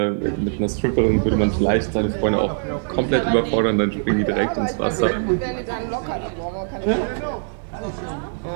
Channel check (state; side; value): silent; left; digital silence